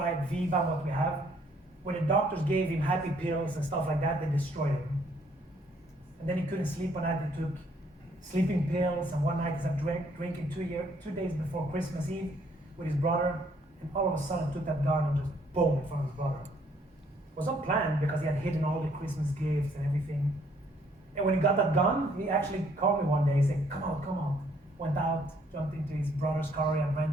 at Viva, what we have, when the doctors gave him happy pills and stuff like that, they destroyed him. And then he couldn't sleep one night. He took sleeping pills, and one night he started drinking 2 days before Christmas Eve with his brother, and all of a sudden took that gun and just boom in front of his brother. It was not planned because he had hidden all the Christmas gifts and everything. And when he got that gun, he actually called me one day. He said, come out. Went out, jumped into his brother's car he had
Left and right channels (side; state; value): both; normal; correlation 0.65